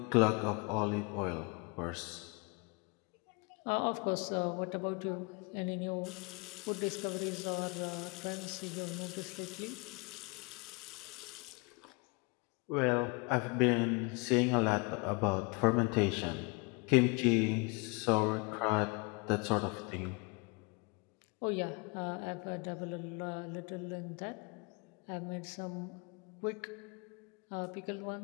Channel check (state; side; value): quieter; right; 30.2 dB